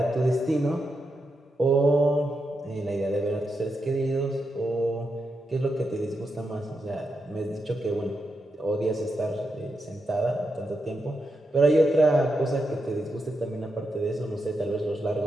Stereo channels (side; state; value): both; normal; correlation 0.85